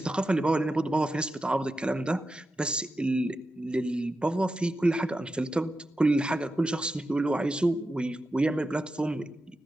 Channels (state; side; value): normal; both; correlation 0.90